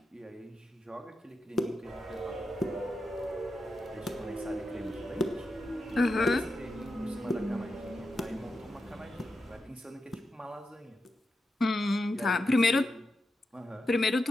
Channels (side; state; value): both; normal; correlation 0.88